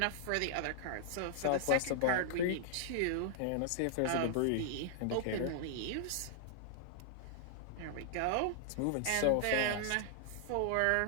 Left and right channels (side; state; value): both; different; correlation -0.01